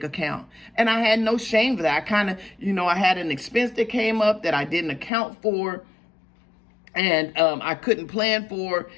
account. And I had no shame for that. I kind of, I had an expense that came up that I didn't account for, and I couldn't plan for,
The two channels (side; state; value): right; drops out; at 5.1 s